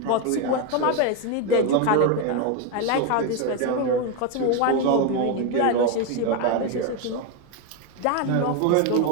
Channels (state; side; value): different; both; correlation 0.02